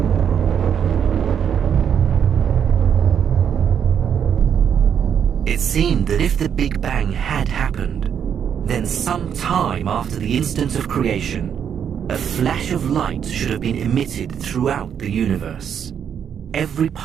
It seemed that if the Big Bang had happened, then some time after the instant of creation, a flash of light should have been emitted throughout the universe. Every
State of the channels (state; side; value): quieter; left; 8.2 dB